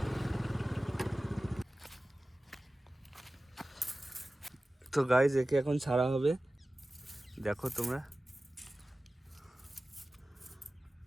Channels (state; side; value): normal; both; correlation 0.96